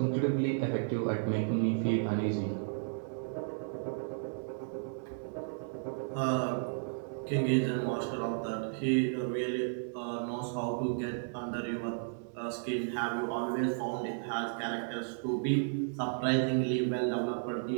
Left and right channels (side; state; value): left; silent; digital silence